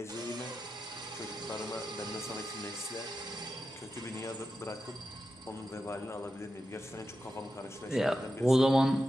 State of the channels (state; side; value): normal; both; correlation 0.90